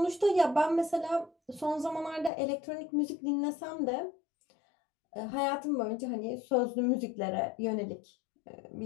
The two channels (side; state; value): right; drops out; at 2.3 s